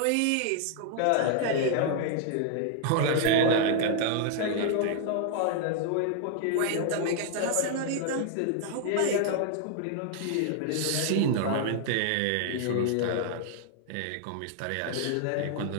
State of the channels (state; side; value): different; both; correlation 0.00